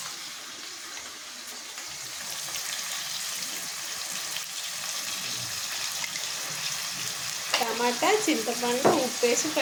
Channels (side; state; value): both; identical; correlation 1.00